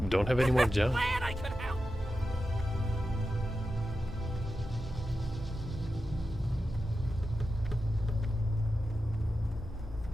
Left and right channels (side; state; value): both; normal; correlation 0.91